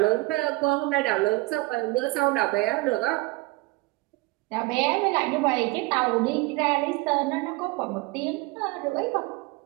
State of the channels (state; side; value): quieter; left; 22.6 dB